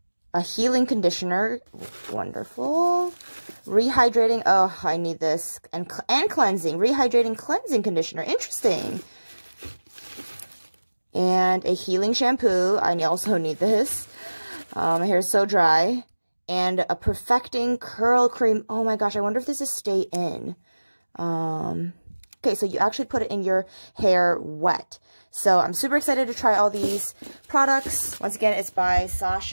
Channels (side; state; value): both; inverted; correlation -1.00